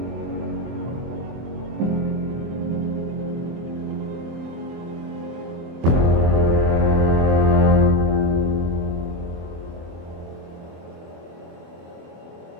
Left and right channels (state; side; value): late; left; 24 ms